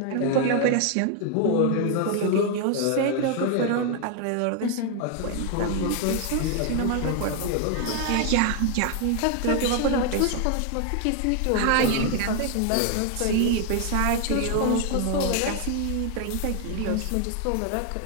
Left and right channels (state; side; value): different; both; correlation 0.01